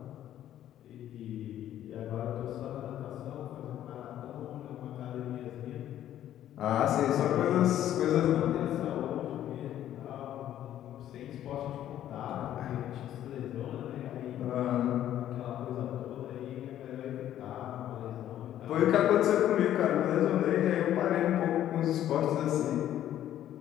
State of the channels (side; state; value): right; quieter; 11.8 dB